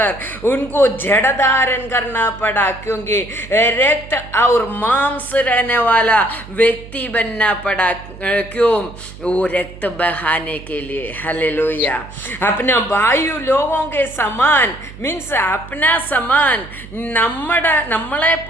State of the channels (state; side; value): noise; right; hum, 16 dB below the sound